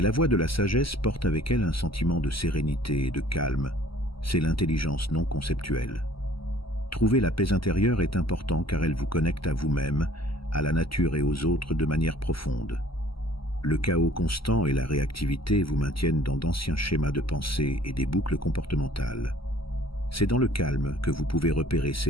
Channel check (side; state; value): right; late; 0.75 ms